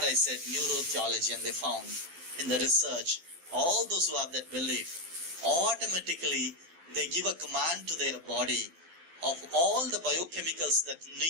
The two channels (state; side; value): late; left; 12 ms